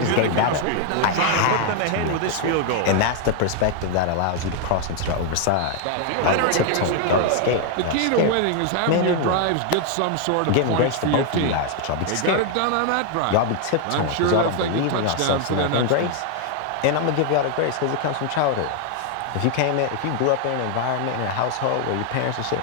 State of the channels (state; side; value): different; both; correlation 0.00